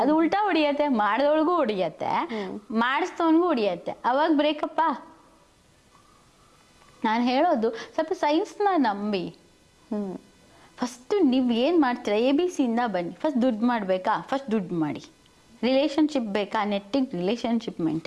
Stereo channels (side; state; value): both; identical; correlation 1.00